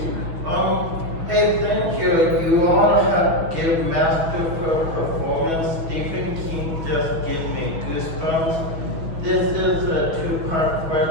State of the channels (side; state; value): left; late; 6.1 ms